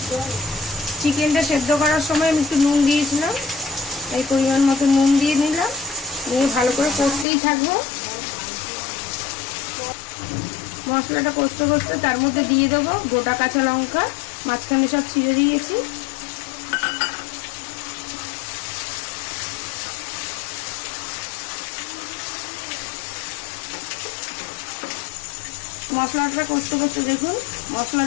চিকেনটা সেদ্ধ করার সময় আমি একটু নুন দিয়েছিলাম, এই পরিমাণ মতো নুন দিয়ে নিলাম, নিয়ে ভালো করে কষতেই থাকবো। মশলাটা কষতে কষতে তার মধ্যে দিয়ে দেবো গোটা কাঁচা লঙ্কা, মাঝখানে সব ছিঁড়ে দিয়েছি। মশলাটা কষতে কষতে দেখুন মশলা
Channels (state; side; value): drops out; right; at 7.2 s